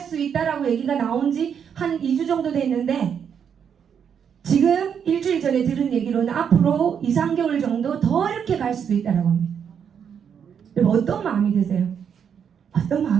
있다라고 얘기가 나온 지 한 2주 정도 됐는데 지금 일주일 전에 들은 얘기로는 앞으로 2, 3개월 정도 더 이렇게 갈 수도 있다라고 합니다. 여러분 어떤 마음이 드세요? 어떤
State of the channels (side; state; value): left; quieter; 7.7 dB